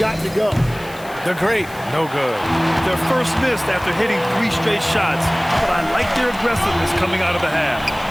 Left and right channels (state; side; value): noise; left; hiss, 21 dB below the sound